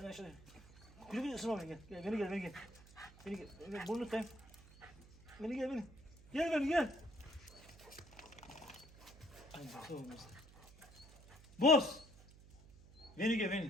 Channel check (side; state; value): right; noise; hum, 21 dB below the sound